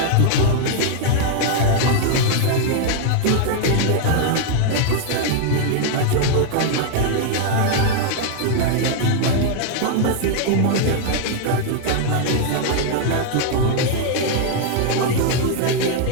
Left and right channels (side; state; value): both; different; correlation 0.00